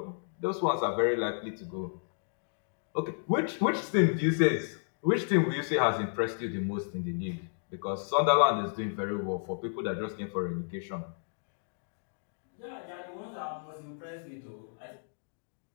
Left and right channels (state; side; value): silent; right; digital silence